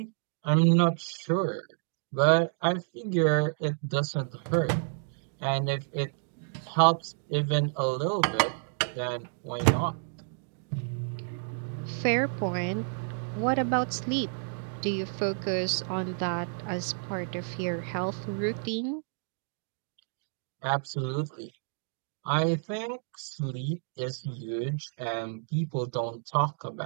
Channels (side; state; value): left; silent; digital silence